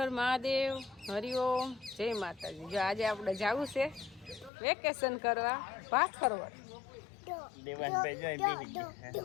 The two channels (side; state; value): right; drops out; at 4.5 s